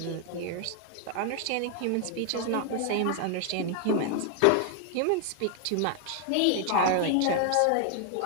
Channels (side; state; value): both; different; correlation 0.00